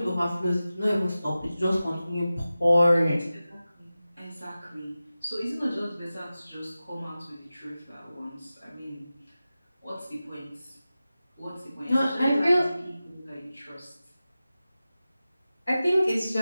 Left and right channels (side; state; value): both; inverted; correlation -0.95